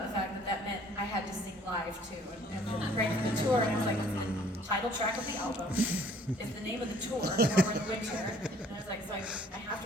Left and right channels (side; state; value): both; normal; correlation 0.57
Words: the fact that that meant I had to sing live too, and then right for the tour, and I was like, the title track of the album is the name of the tour, Warmer in the Winter, and I was like, so I have